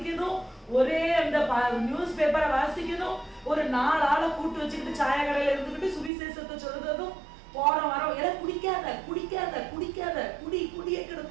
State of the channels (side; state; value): left; drops out; at 6.1 s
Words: ஒரே அந்த நியூஸ் பேப்பரை வாசிக்கணும், ஒரு 4 ஆளை கூட்டு வச்சுக்கிட்டு சாய கடையில இருந்துக்கிட்டு சுவிசேஷத்தை சொல்றதும், போற வரோம் எல்லாம் குடிக்காத குடிக்காத குடிக்காத குடி குடியே